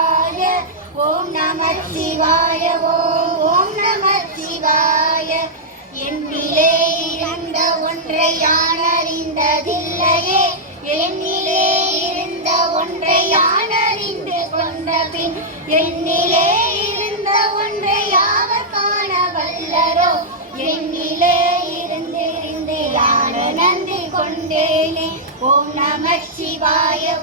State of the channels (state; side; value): normal; both; correlation -0.09